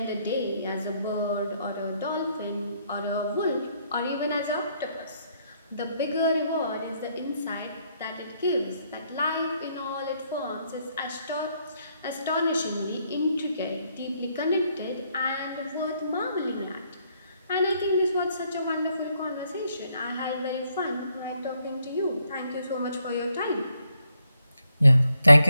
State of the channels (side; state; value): both; inverted; correlation -0.73